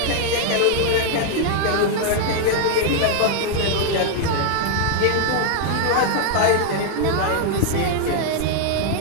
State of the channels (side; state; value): both; different; correlation 0.00